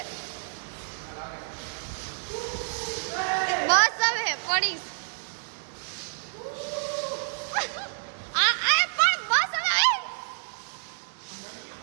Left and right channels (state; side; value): silent; left; digital silence